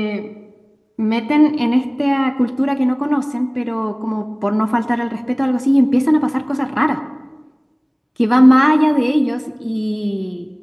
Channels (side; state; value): both; identical; correlation 1.00